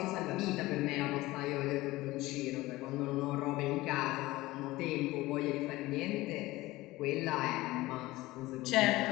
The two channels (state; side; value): quieter; right; 18.8 dB